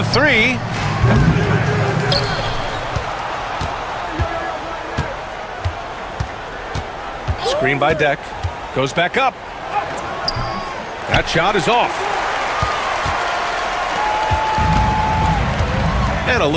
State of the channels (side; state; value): both; identical; correlation 1.00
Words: three. Screen by Deck. Goes back up. That shot is off. And a